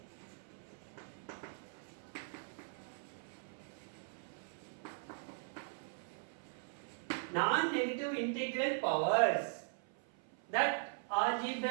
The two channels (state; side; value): silent; left; 51 dB below the other